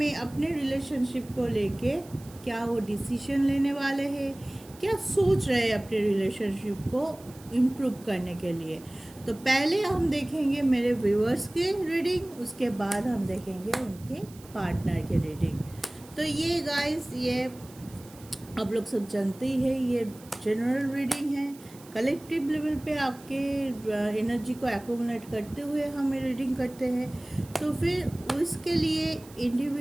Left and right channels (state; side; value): noise; right; hiss, 22 dB below the sound